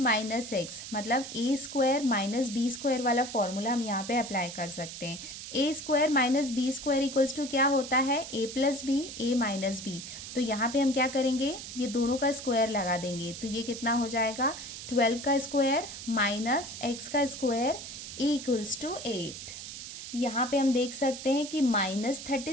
एक्स मतलब a square minus b square वाला फॉर्मूला हम यहाँ पे अप्लाई कर सकते हैं। A square minus b square equals to क्या होता है, a plus b a minus b. तो यहाँ पे हम क्या करेंगे, ये दोनों का स्क्वायर लगा देंगे तो ये कितना हो जाएगा, 12 का स्क्वायर माइनस एक्स का स्क्वायर इक्वल्स टू 8। यहाँ पे हम देख सकते हैं कि माइनस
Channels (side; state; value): right; noise; hiss, 10 dB below the sound